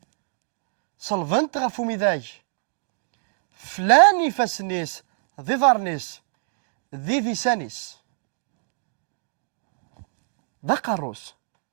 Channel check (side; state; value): left; silent; digital silence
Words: صلفن تغافو ميداي فلان يفاسنيس ذي ظارنيس ذي ذيسانيس ذا قاروس